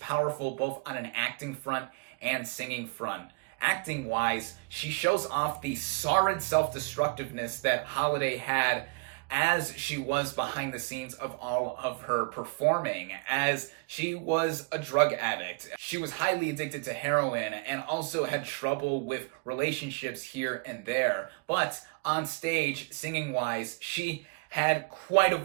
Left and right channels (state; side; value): quieter; left; 31.9 dB